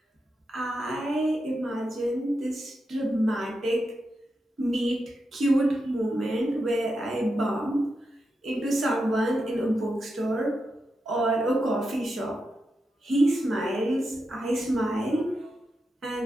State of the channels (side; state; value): both; normal; correlation 0.87